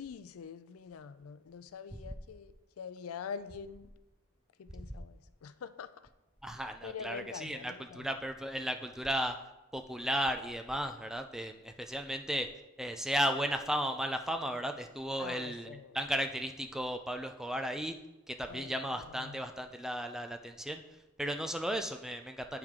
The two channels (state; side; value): normal; both; correlation 0.72